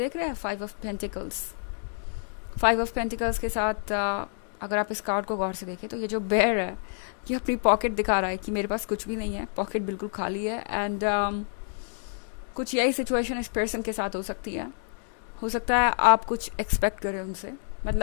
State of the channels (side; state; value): right; silent; 59 dB below the other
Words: रहे हैं five of pentacles. Five of pentacles के साथ अगर आप इस कार्ड को गौर से देखें तो ये जो बेयर है ये अपनी पॉकेट दिखा रहा है कि मेरे पास कुछ भी नहीं है, पॉकेट बिल्कुल खाली है। एंड कुछ यही सिचुएशन इस पर्सन के साथ हो सकती है। हो सकता है आप कुछ एक्सपेक्ट करें उनसे,